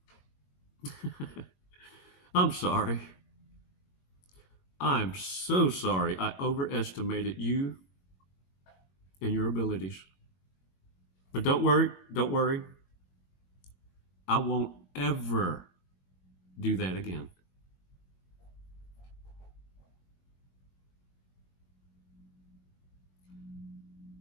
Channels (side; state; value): right; late; 21 ms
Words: I'm sorry. I'm so sorry I overestimated you and your abilities. But don't worry. I won't ever do that again.